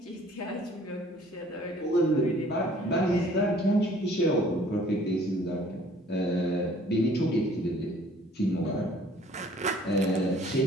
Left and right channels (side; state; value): both; normal; correlation 0.55